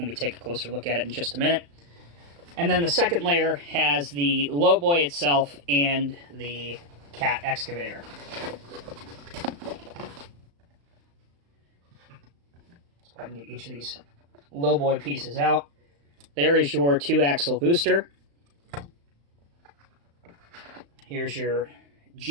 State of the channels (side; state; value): left; late; 35 ms